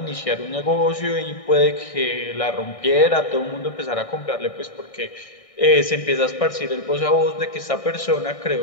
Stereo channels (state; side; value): late; right; 1.6 ms